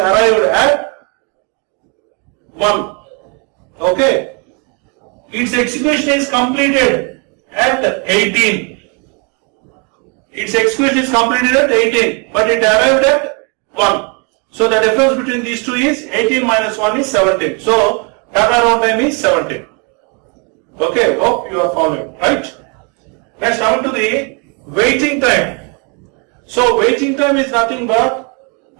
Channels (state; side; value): quieter; left; 34.5 dB